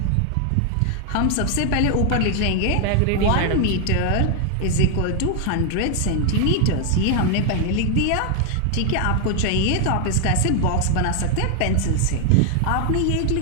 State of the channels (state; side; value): different; both; correlation 0.00